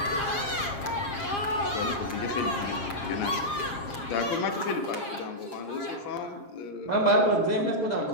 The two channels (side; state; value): right; late; 7.4 ms